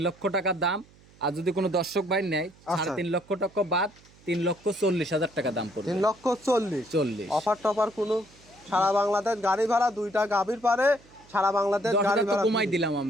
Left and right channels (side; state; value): right; noise; hum, 27 dB below the sound